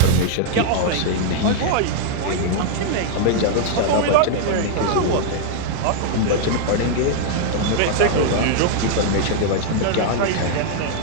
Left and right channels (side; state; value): both; different; correlation -0.01